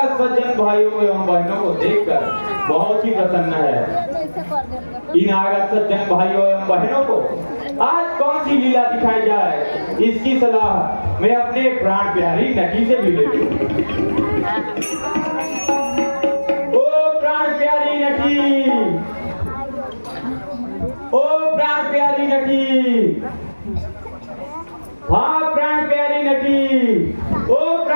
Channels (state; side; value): inverted; both; correlation -1.00